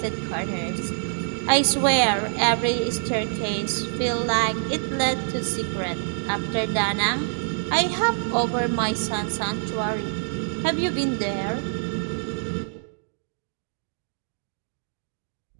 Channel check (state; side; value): silent; left; digital silence